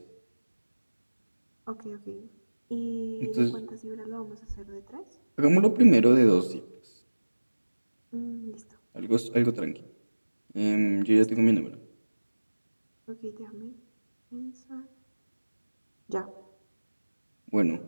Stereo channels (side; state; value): both; inverted; correlation -1.00